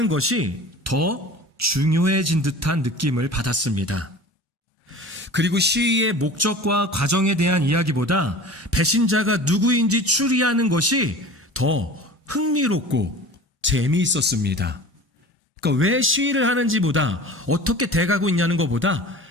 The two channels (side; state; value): both; normal; correlation 0.39